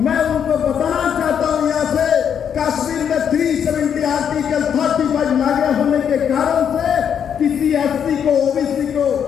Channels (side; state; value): right; quieter; 8.2 dB